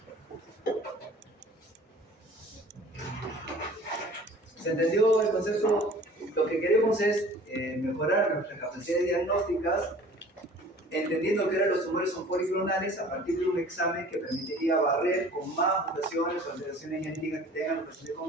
¿Se entendió el concepto? Lo que queremos es mejorar nuestras capacidades diagnósticas, entendiendo que ahora los tumores son policlonales a partir de un examen que permitiría barrer con más mutaciones o alteraciones genéticas que tengan los pacientes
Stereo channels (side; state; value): both; normal; correlation 0.47